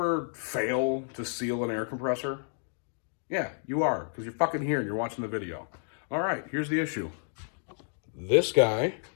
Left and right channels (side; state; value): right; silent; digital silence